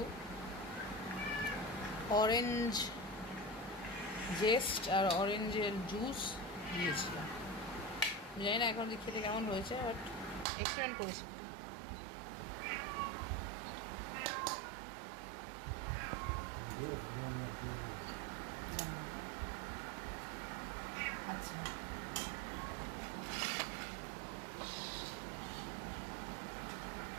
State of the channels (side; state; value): left; drops out; at 10.5 s